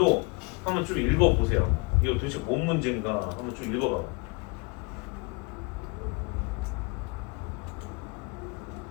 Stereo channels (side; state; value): right; quieter; 29.7 dB